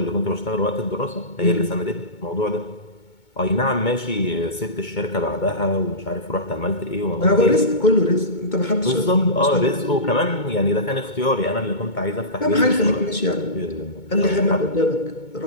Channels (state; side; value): late; right; 2.2 ms